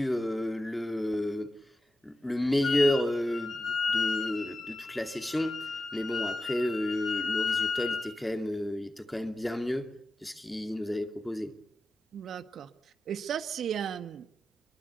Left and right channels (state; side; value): normal; both; correlation 0.91